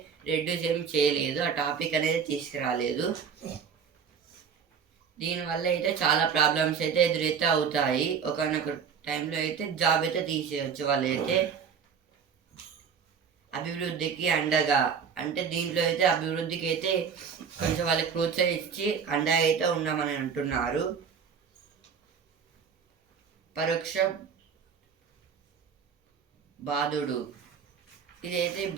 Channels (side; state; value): left; quieter; 6.7 dB